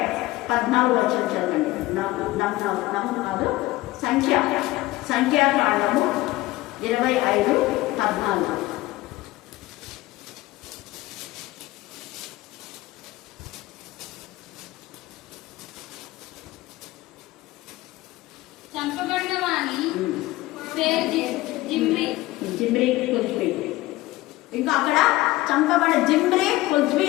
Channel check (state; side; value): quieter; right; 18.4 dB